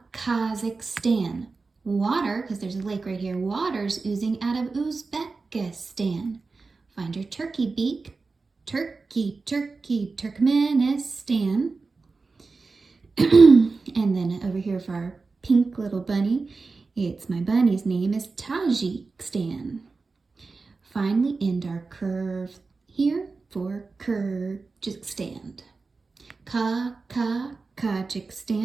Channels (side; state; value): left; quieter; 4.1 dB